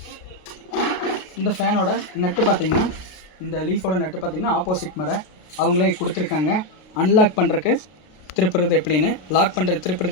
இந்த ஃபேனோட நட்டு பார்த்திங்கன்னா, இந்த லீஃபோட நட்டு பார்த்திங்கன்னா ஆப்போசிட் மர அவங்களே கொடுத்துருக்காங்க. அன்லாக் பண்ணுறதுக்கு திருப்புறது எப்படின்னு, லாக் பண்ணுறது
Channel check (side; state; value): right; late; 32 ms